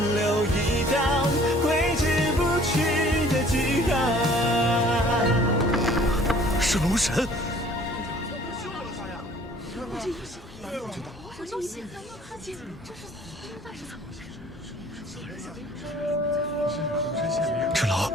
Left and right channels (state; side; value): normal; both; correlation 0.53